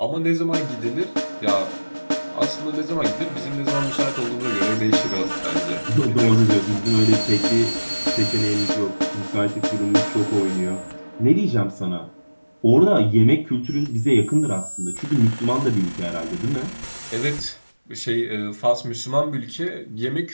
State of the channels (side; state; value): both; inverted; correlation -1.00